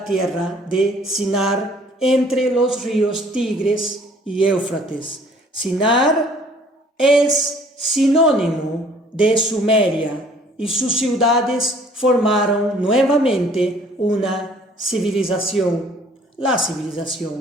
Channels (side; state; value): both; normal; correlation 0.56